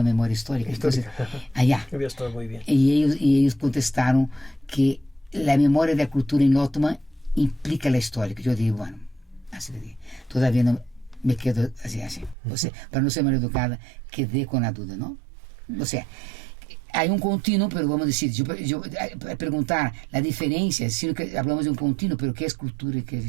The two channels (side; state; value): left; drops out; at 12.4 s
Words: memoria histórica? Entonces, allá. Había estado muy bien. Y ellos contestaron que la memoria de la cultura en Ottoman implica la historia. Yo dije, bueno, así le dije. Todavía no me quedo así. O sea, para no ser mal educada, quedé con la duda, ¿no? O sea, hay un continuo, pero vamos a decir, yo preguntar la diferencia, sino que hablamos de un continuo, pero ¿qué es cultura y qué es